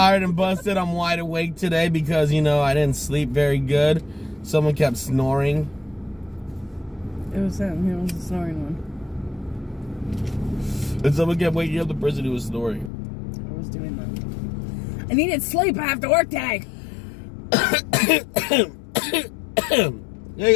and busted. I'm wide awake today because, you know, I didn't sleep very good. Someone kept snoring. It was him. He was the snoring one. And someone kept waking up the person who was snoring. I was doing that. I needed sleep. I have to work today.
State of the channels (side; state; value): right; drops out; at 12.9 s